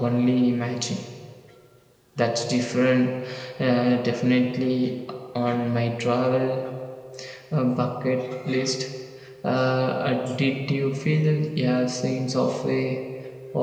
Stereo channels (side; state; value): both; identical; correlation 1.00